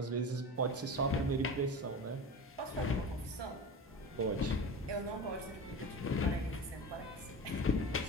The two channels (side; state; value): both; normal; correlation 0.29